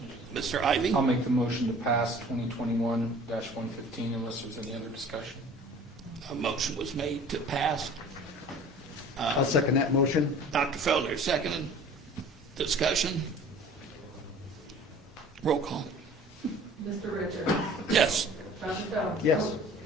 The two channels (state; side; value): normal; both; correlation 0.47